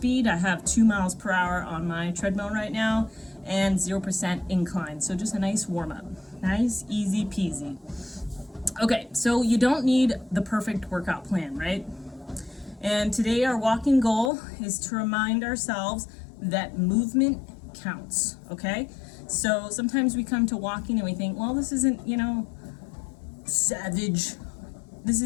I have 2 miles per hour on my treadmill right now and 0% incline. So just a nice warm-up. Nice, easy peasy. Okay, so you don't need the perfect workout plan, right? And today our walking goal is to remind ourselves that movement counts, okay? So sometimes we come to walking and we think, well, this isn't, savage. This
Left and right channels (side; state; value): right; drops out; at 14.3 s